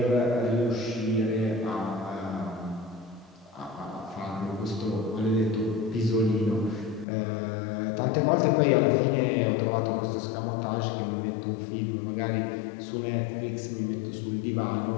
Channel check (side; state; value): right; drops out; at 7.1 s